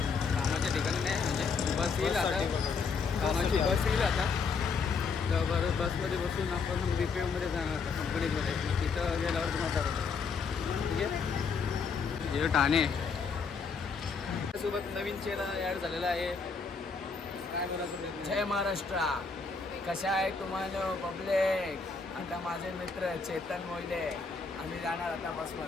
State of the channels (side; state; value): right; quieter; 5.1 dB